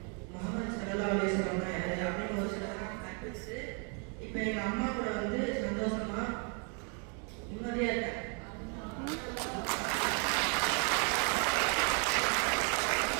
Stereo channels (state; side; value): quieter; left; 38.0 dB